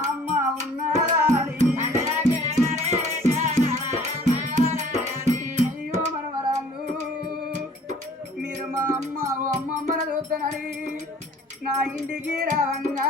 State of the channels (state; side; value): normal; both; correlation 0.52